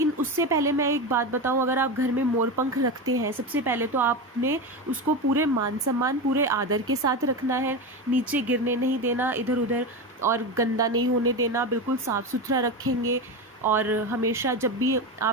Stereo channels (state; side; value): normal; both; correlation 0.19